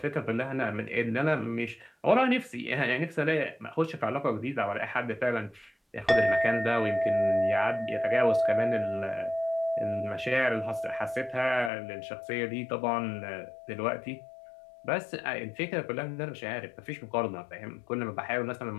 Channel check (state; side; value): drops out; right; at 11.7 s